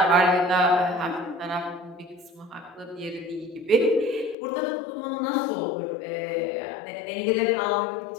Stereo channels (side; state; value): right; drops out; at 4.4 s